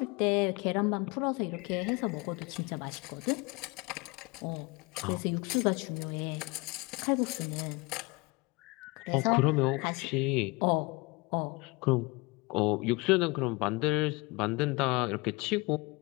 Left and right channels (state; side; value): quieter; right; 26.3 dB